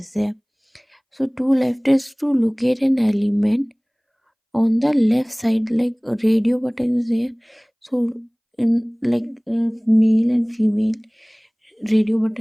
there. So two left is to locate an element on the left side, like a radio button is there. So in like male and female radio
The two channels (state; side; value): identical; both; correlation 1.00